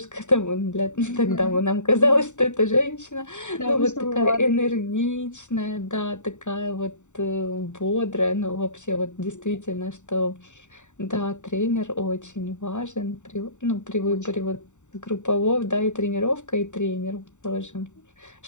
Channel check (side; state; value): right; late; 0.84 ms